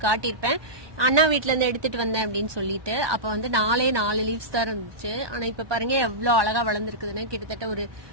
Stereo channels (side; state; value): left; late; 1.2 ms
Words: காட்டியிருப்பேன், அண்ணா வீட்டுல இருந்து எடுத்துட்டு வந்தேன் அப்படின்னு சொல்லிட்டு. அப்ப வந்து 4 லீவ்ஸ் தான் இருந்துச்சு. ஆனா இப்ப பாருங்க எவ்வளவு அழகா வளர்ந்துருக்குதுன்னு. கிட்டத்தட்ட ஒரு